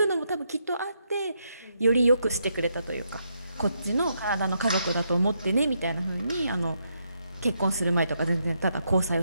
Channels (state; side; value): inverted; both; correlation -0.79